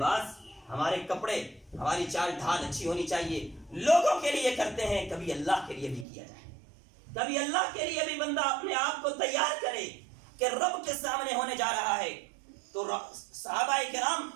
ہمارے کپڑے، ہماری چال ڈھال اچھی ہونی چاہیے، لوگوں کے لیے کرتے ہیں، کبھی اللہ کے لیے بھی کیا جائے، کبھی اللہ کے لیے بھی بندہ اپنے آپ کو تیار کرے، کہ رب کے سامنے ہونے جا رہا ہے، تو صحابہ کرام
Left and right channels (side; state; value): left; drops out; at 6.1 s